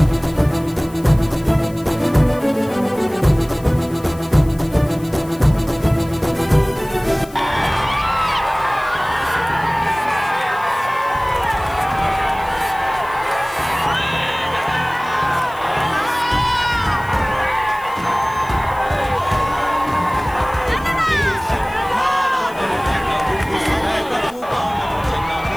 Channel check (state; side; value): noise; left; hiss, 23 dB below the sound